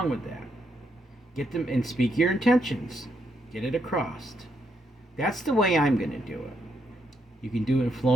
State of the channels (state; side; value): normal; both; correlation 0.77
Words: with that. Get them and speak your intentions. Get it across. That's the way I'm going to do it. You can do it in